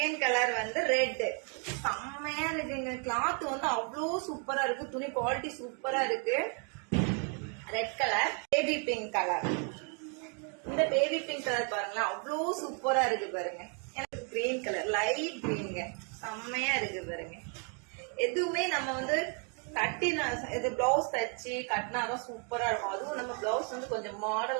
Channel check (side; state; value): left; quieter; 39.2 dB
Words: கலர் வந்து ரெட், செம்மையா இருக்குங்க. கிளாத் வந்து அவ்வளோ சூப்பரா இருக்கு, துணி குவாலிட்டி சூப்பரா இருக்கு. Red colour. Baby pink colour. இந்த பேபி பிங்க் கலர் பாருங்களேன், அவ்வளோ சூப்பரா இருக்கு பாருங்க. எனக்கு கிரீன் கலர், லைட் கிரீனுங்க, செம்மையா இருக்கு பாருங்க. எதுவுமே நம்ம வந்து கட்டினா இது பிளவுஸ் தச்சு கட்டினாதான் சூப்பரா இருக்கும். அதுவும் நம்ம பிளவுஸ் வந்து கொஞ்சம்